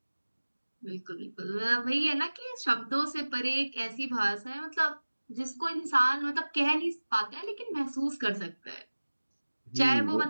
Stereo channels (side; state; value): both; inverted; correlation -1.00